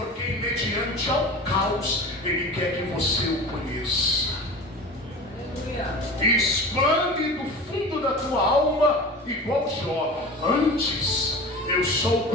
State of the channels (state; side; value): normal; both; correlation 0.34